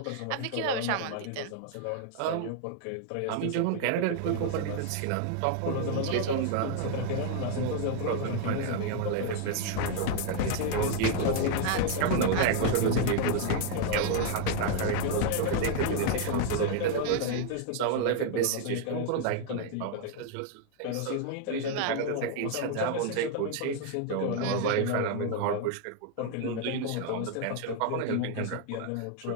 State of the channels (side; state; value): both; different; correlation 0.00